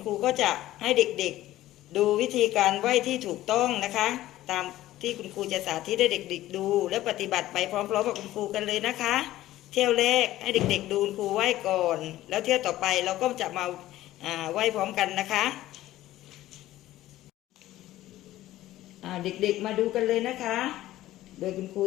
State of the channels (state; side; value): quieter; right; 15.0 dB